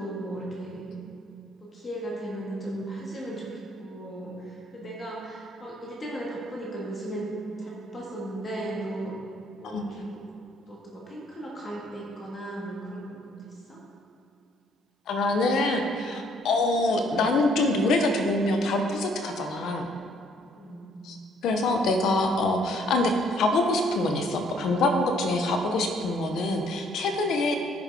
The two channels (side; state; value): both; normal; correlation 0.64